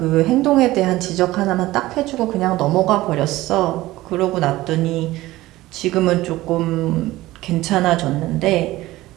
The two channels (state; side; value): quieter; left; 17.3 dB